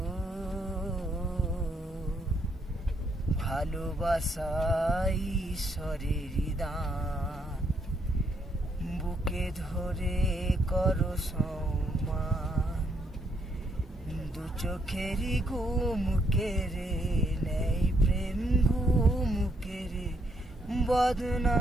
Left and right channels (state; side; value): normal; both; correlation 0.73